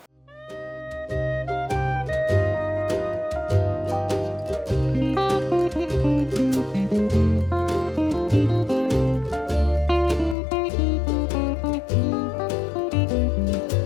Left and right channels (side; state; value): right; drops out; at 10.4 s